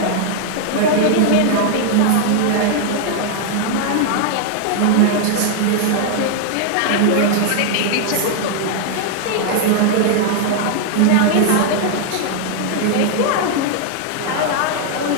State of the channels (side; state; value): both; different; correlation 0.00